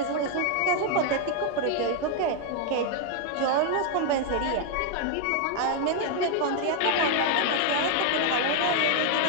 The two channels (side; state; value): both; different; correlation 0.00